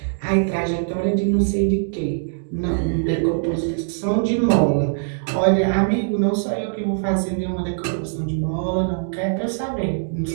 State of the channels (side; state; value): left; silent; digital silence